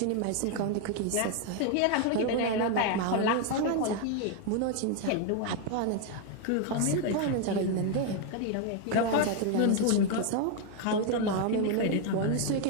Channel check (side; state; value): both; different; correlation 0.01